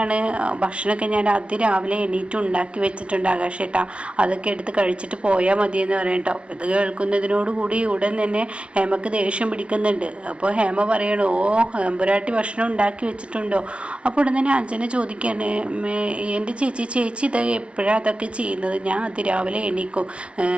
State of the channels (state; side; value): late; left; 0.055 ms